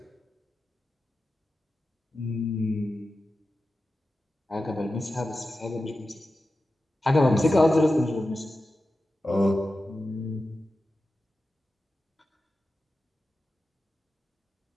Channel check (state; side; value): normal; both; correlation 0.93